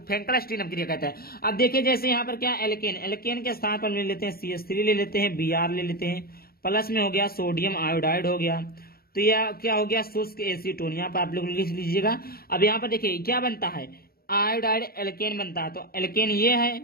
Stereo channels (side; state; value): right; late; 0.44 ms